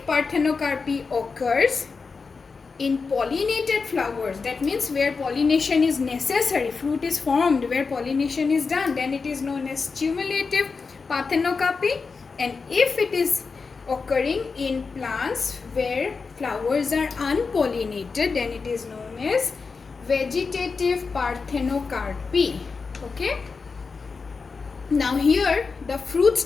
parthenocarpy occurs in pollinated flowers, that means where pollination is necessary, fruit is formed where pollination is done, then it is known as stimulative parthenocarpy. And if it is occurring in plants where flowers are unpollinated, then it is known as vegetative parthenocarpy. Okay, now here the fruits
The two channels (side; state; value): right; quieter; 4.7 dB